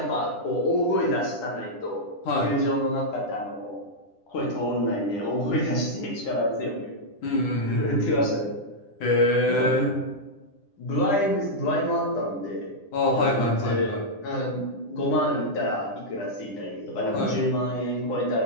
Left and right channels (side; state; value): right; late; 9.9 ms